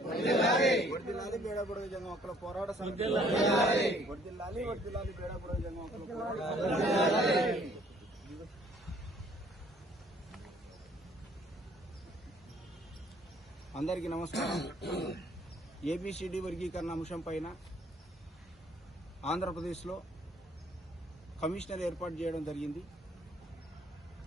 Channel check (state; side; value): normal; both; correlation 0.61